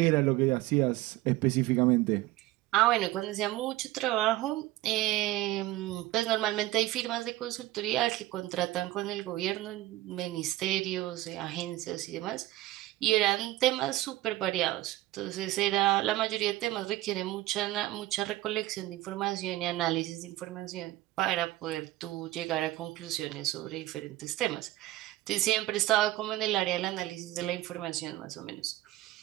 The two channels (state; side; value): quieter; left; 16.6 dB